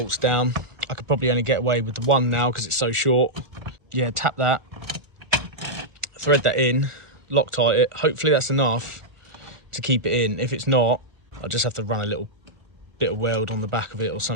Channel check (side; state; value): left; late; 1.4 ms